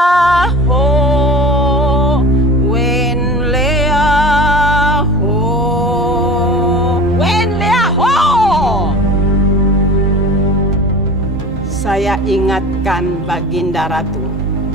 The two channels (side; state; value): both; normal; correlation 0.37